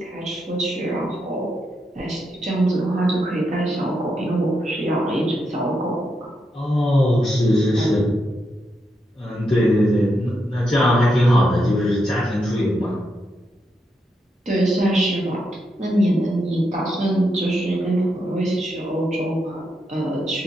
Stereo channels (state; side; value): normal; both; correlation 0.82